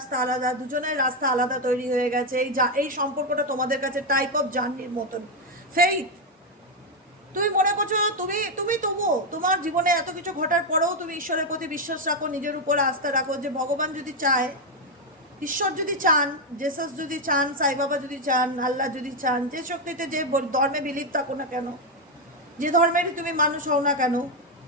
আলাদা, দুজনের রাস্তা আলাদা তৈরি হয়ে গেছে। এই সম্পর্কটা তোমাদের কাছে টাইপ অফ জার্নির মতন। ফেইথ, তুমি মনে করছো তুমি তুমি তবুও তোমার জীবনে এত কিছু ঘটার পরেও তুমি ঈশ্বরের প্রতি বিশ্বাস রাখো, নিজের উপর আস্থা রাখো, যে ভগবান যদি চায়, ঈশ্বর যদি চান, জেসাস যদি চান, সাই বাবা যদি চান, আল্লাহ যদি চান, যে শক্তিতে যে ধর্মে বিলিভ থাকো না কেন, যে ধর্মেরই তুমি মানুষ হও না কেন,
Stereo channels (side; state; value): both; normal; correlation 0.04